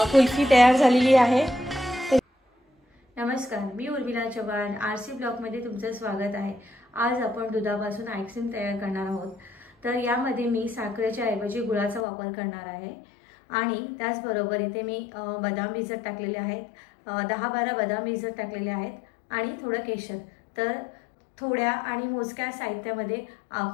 कुल्फी तयार झालेली आहे। नमस्कार, मी उर्मिला चव्हाण, आरसी ब्लॉगमध्ये तुमचं स्वागत आहे। आज आपण दुधापासून आईस्क्रीम तयार करणार आहोत। तर यामध्ये मी साखरेच्या ऐवजी गुळाचा वापर करणार आहे आणि त्याचबरोबर इथे मी बदाम भिजत टाकलेले आहेत, 10-12 बदाम भिजत टाकलेले आहेत आणि थोडं केशर। तर थोड्या आणि मोजक्या साहित्यामध्ये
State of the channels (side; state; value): right; drops out; at 12.1 s